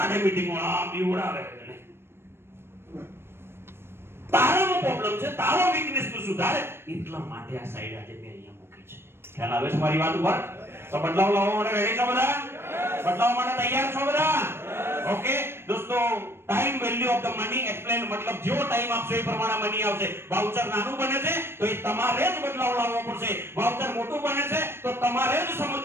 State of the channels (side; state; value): left; late; 0.12 ms